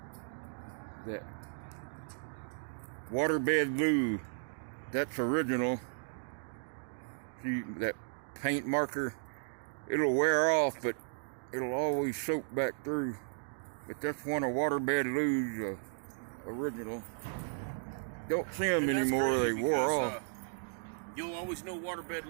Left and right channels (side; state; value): left; silent; digital silence